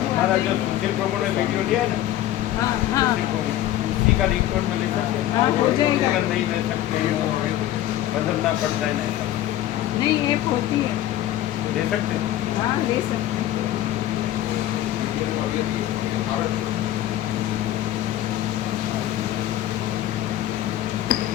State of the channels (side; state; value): right; quieter; 13.3 dB